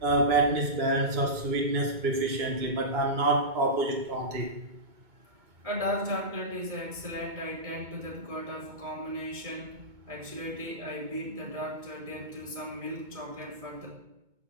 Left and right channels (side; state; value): left; late; 2.2 ms